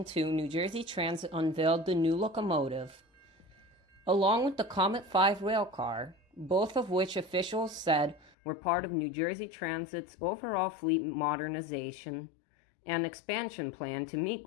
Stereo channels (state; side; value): drops out; right; at 8.3 s